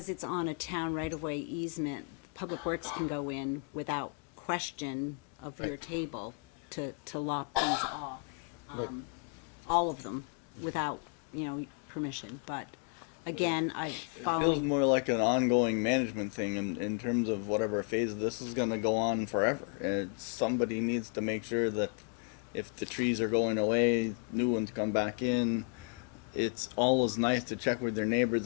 it's on a town right-of-way easement, Public Works can go in without question of your Right. table to lop these off. Right. All of them, without, permission, but again, I Feels follow. more like an ongoing management thing in terms of whatever phase this is going to go on forever. And somebody needs to make sure that if the trees are going away, new ones come back in. It's always nice to check with their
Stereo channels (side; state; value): right; quieter; 36.8 dB